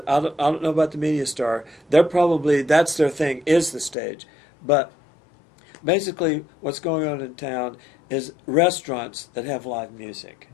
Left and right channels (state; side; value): drops out; right; at 4.0 s